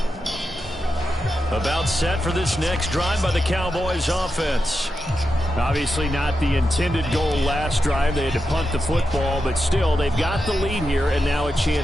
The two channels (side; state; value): both; normal; correlation 0.89